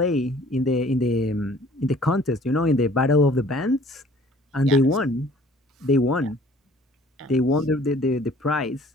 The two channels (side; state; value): both; normal; correlation 0.54